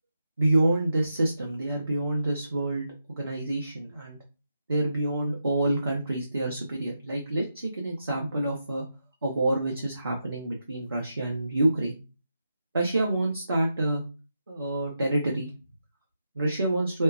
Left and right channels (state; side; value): inverted; both; correlation -0.85